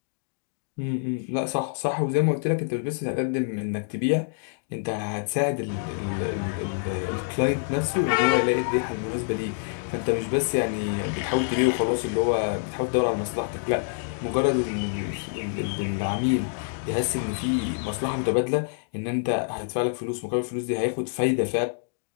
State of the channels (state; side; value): silent; right; digital silence